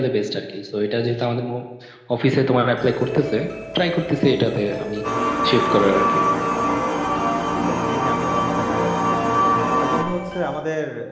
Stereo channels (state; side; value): identical; both; correlation 1.00